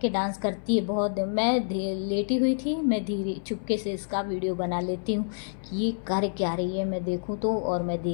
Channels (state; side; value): silent; right; 60 dB below the other